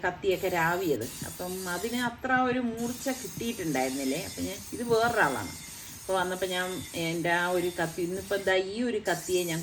കത്തിയൊക്കെ രാവിയത്. അപ്പം അതിന് അത്ര ഒരു മൂർച്ച കിട്ടിയിട്ടുണ്ടായിരുന്നില്ലേ. അപ്പം ഞാൻ ഇത് വേറൊരാളാണ്. അപ്പോൾ വന്നപ്പോൾ ഞാൻ എൻ്റെ ആ ഒരു കത്തി ഇന്നിപ്പോൾ എന്താ ഈ ഒരു കത്തിയെ ഞാൻ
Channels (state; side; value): identical; both; correlation 1.00